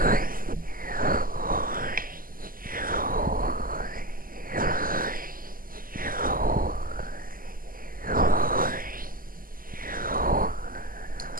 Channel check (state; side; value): late; left; 0.41 ms